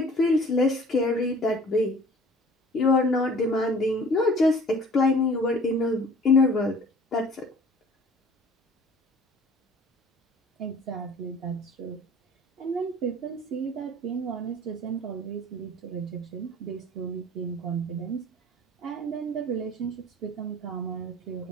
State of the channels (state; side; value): normal; both; correlation 0.48